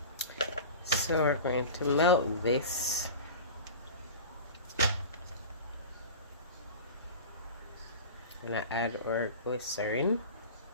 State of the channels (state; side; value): inverted; both; correlation -0.32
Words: So we're going to melt this. I'm gonna add our glycerin.